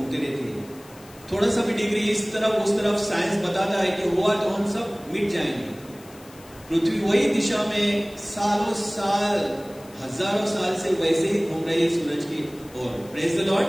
रहती है। थोड़ा सा भी डिग्री इस तरफ उस तरफ साइंस बताता है कि हुआ तो हम सब मिट जाएंगे। पृथ्वी वही दिशा में सालों साल, हजारों साल से वैसे ही घूम रही है सूरज की ओर। Praise the Lord.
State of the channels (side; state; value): left; noise; hiss, 23 dB below the sound